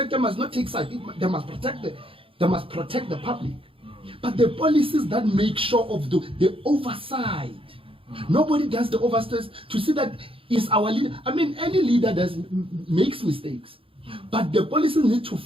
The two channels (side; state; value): left; late; 0.26 ms